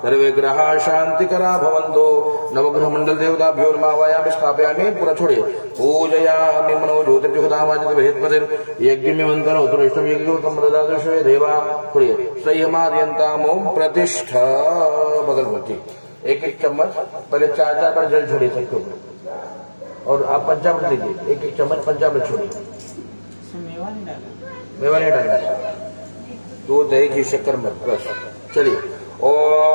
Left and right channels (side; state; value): both; inverted; correlation -1.00